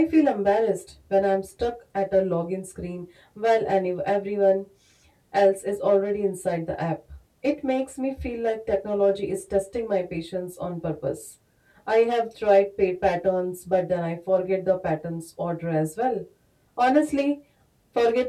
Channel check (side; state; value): both; identical; correlation 1.00